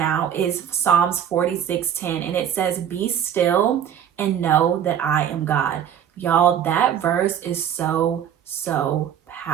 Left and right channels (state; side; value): quieter; left; 9.4 dB